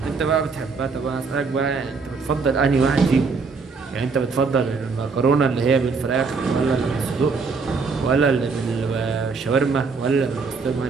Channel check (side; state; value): left; quieter; 4.7 dB